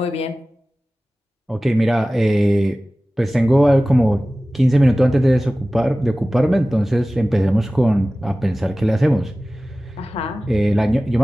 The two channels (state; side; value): normal; both; correlation 0.97